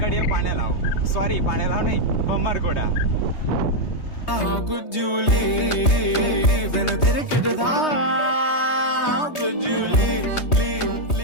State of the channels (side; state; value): right; late; 3.2 ms